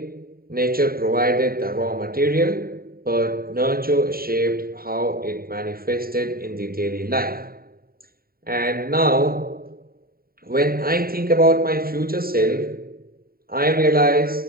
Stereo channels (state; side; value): late; left; 0.43 ms